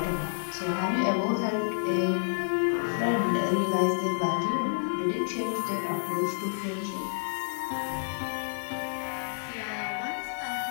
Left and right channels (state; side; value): silent; right; digital silence